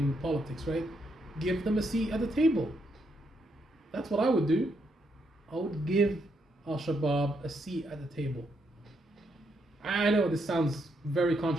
politics, right? Give them a seat at the table. That's what I would do. I would give Al-Shabaab a seat at the table. I know this sounds very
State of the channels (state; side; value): normal; both; correlation 0.77